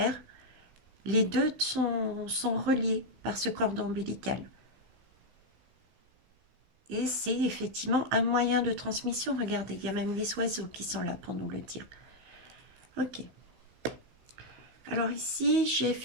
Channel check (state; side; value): late; left; 16 ms